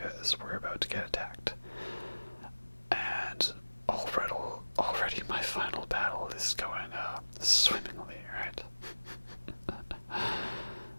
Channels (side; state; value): both; inverted; correlation -1.00